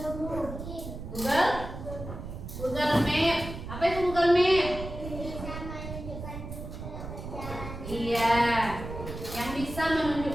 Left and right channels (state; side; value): noise; right; rumble, 9 dB below the sound